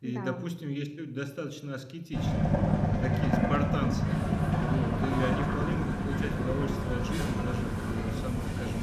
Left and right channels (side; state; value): both; identical; correlation 1.00